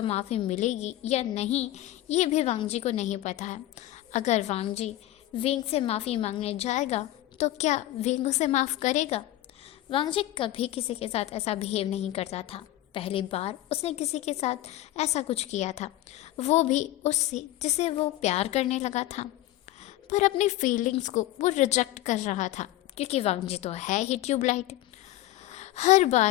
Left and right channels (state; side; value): quieter; right; 15.1 dB